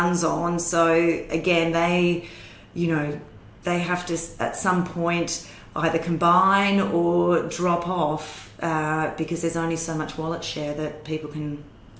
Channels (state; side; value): identical; both; correlation 1.00